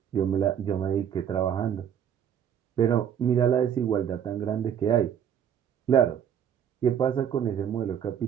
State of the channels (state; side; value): quieter; left; 8.9 dB